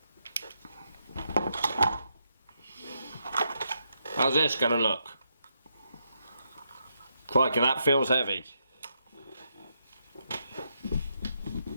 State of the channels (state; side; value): inverted; both; correlation -0.80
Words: how's this going to look? Crikey, that feels heavy.